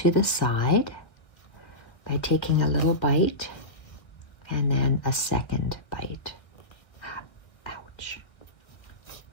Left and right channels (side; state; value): right; late; 1.3 ms